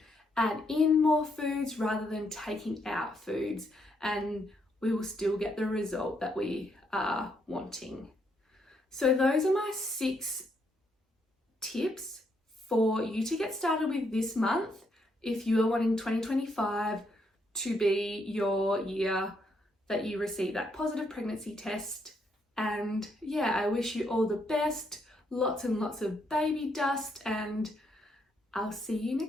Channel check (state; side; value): normal; both; correlation 0.75